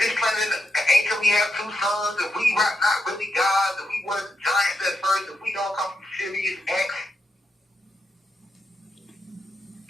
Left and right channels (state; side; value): normal; both; correlation 0.84